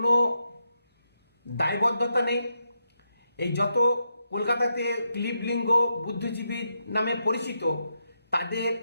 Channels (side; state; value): both; inverted; correlation -0.83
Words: দায়বদ্ধতা নেই। এই যত কলকাতাতে ক্লিবলিঙ্গ বুদ্ধিজীবী নামে পরিচিত, তাদের